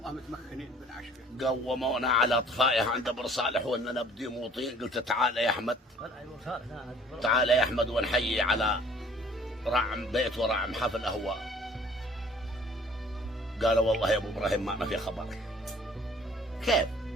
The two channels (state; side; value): normal; both; correlation 0.54